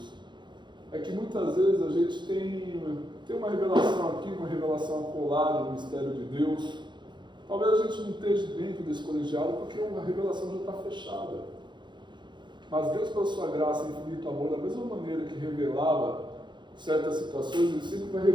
é que muitas vezes a gente tem uma revelação aqui, uma revelação acolada no mistério de Deus. Talvez a gente não esteja dentro desse colegiado porque a revelação já está fechada. Mas Deus, pela sua graça e infinito amor, da mesma maneira que revelava certas situações, Ele sempre vai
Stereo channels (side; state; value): left; late; 0.22 ms